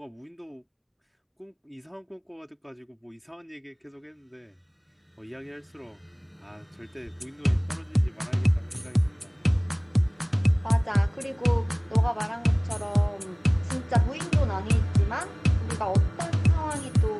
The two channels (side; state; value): both; identical; correlation 1.00